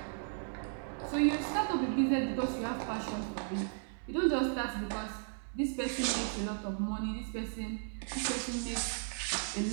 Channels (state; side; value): silent; left; digital silence